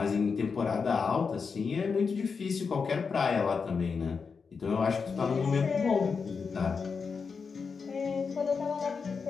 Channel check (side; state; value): right; quieter; 5.4 dB